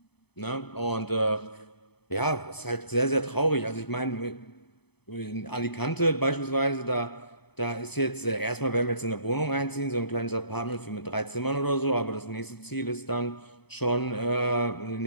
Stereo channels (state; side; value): late; right; 0.98 ms